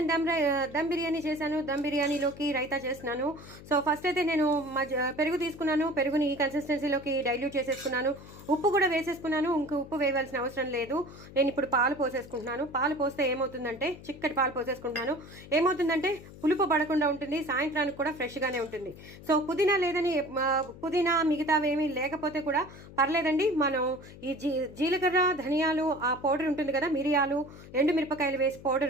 దమ్ బిర్యానీ చేశాను. దమ్ బిర్యానీలోకి రైతా చేస్తున్నాను. సో ఫస్ట్ అయితే నేను పెరుగు తీసుకున్నాను. పెరుగుని ఈ కన్సిస్టెన్సీలోకి డైల్యూట్ చేసేసుకున్నాను. ఉప్పు కూడా వేసేసుకున్నాను. ఇంక ఉప్పు వేయవలసిన అవసరం లేదు. నేను ఇప్పుడు పాలు పోసేసుకుంటున్నాను. పాలు పోస్తే ఏమవుతుందంటే, చిక్కటి పాలు పోసేసుకుంటున్నాను. ఏమవుతుందంటే పులుపు పడకుండా ఉంటుంది, సాయంత్రానికి కూడా ఫ్రెష్గానే ఉంటుంది. సో పుదీనా లేదని పుదీనా మిగతావి ఏమీ లేకపోతే కూడా పర్లేదండి. మనం ఈ జీలకర్ర ధనియాలు ఆ పౌడర్ ఉంటుంది కదా, మిరియాలు ఎండుమిరపకాయలు వేసి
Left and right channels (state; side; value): noise; left; hum, 17 dB below the sound